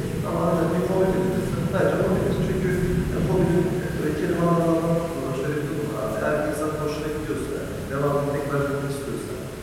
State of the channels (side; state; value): both; identical; correlation 1.00